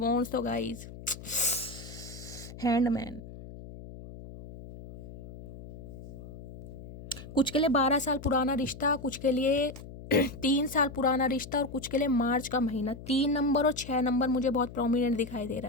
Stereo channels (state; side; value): noise; left; hum, 14 dB below the sound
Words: तो गाइस हैंडमैन, कुछ के लिए 12 साल पुराना रिश्ता, कुछ के लिए 3 साल पुराना रिश्ता, और कुछ के लिए मार्च का महीना। 3 नंबर और 6 नंबर मुझे बहुत प्रोमिनेंट दिखाई दे